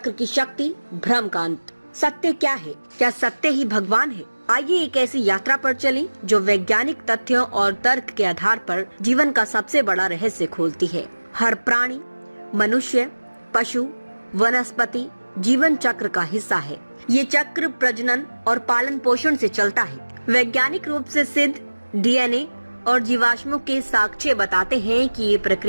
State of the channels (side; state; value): both; inverted; correlation -1.00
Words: की शक्ति, भ्रम का अंत। सत्य क्या है? क्या सत्य ही भगवान है? आइए एक ऐसी यात्रा पर चलें जो वैज्ञानिक तथ्यों और तर्क के आधार पर जीवन का सबसे बड़ा रहस्य खोलती है। हर प्राणी, मनुष्य, पशु, वनस्पति जीवन चक्र का हिस्सा है। ये चक्र प्रजनन और पालन पोषण से चलता है। वैज्ञानिक रूप से सिद्ध डीएनए और जीवाश्मों के साक्ष्य बताते हैं कि ये